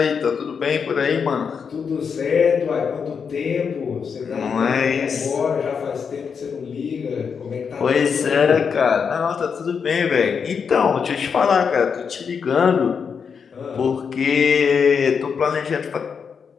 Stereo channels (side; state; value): right; quieter; 6.3 dB